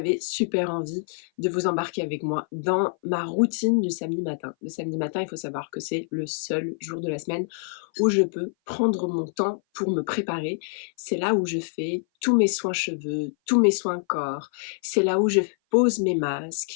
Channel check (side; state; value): right; silent; 57 dB below the other